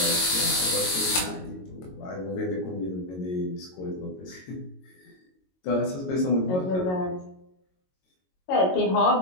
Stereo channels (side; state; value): right; late; 22 ms